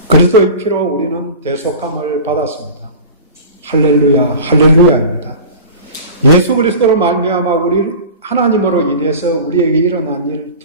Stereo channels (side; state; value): both; inverted; correlation -0.35